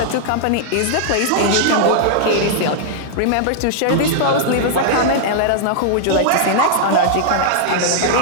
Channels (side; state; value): both; different; correlation -0.01